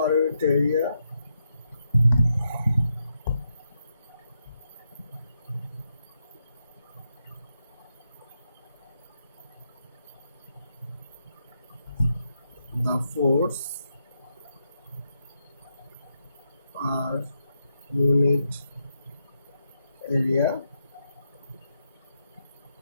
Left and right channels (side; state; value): both; inverted; correlation -0.83